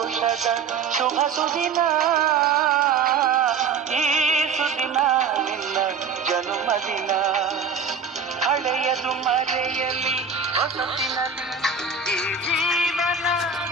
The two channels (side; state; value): left; quieter; 5.6 dB